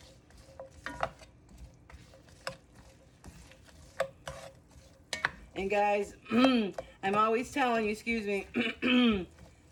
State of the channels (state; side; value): identical; both; correlation 1.00